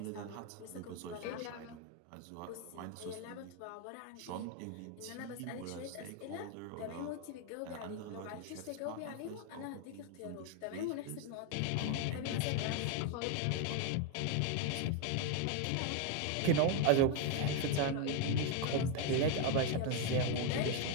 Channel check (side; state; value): both; different; correlation 0.01